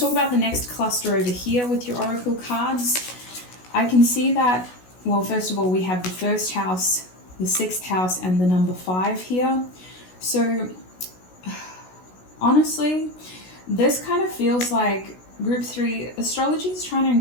about the next cluster over here with your oracle cards. I can see that, well, first of all, we have the 1st house, the 6th house, and the number 5 here. So honestly, this kind of feels like group 3, astrology is trying to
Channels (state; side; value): late; right; 16 ms